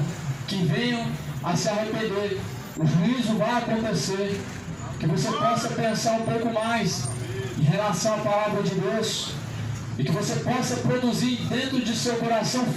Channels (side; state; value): both; identical; correlation 1.00